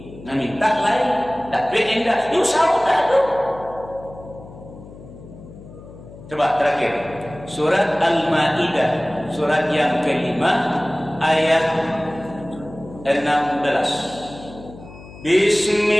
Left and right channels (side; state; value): left; noise; hum, 17 dB below the sound